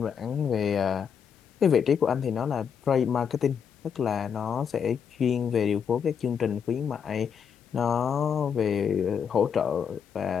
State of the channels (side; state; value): right; quieter; 7.3 dB